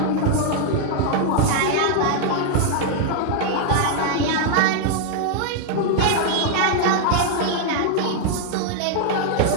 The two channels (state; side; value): different; both; correlation 0.00